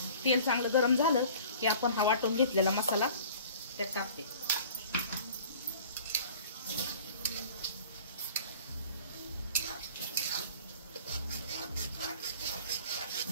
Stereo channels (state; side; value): inverted; both; correlation -0.47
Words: तेल चांगलं गरम झालं की आपण हा वाटून घेतलेला मसाला त्यात टाकते।